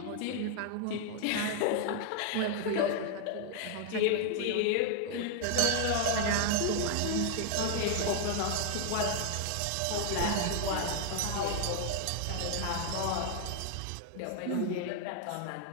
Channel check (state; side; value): different; both; correlation 0.00